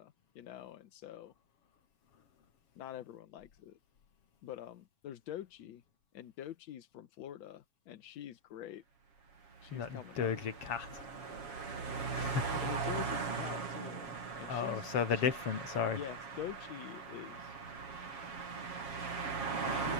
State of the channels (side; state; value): right; late; 7.3 ms